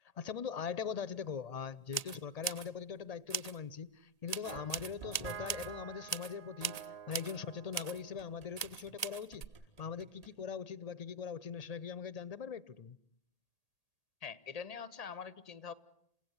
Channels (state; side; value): late; right; 1.8 ms